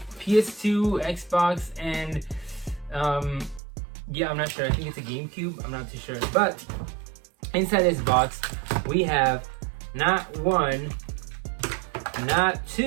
PS2, Xbox, and yeah, I'm not sure. I think it's a GameCube. I'm not too sure. But inside this box, we have not one, not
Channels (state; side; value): drops out; left; at 3.6 s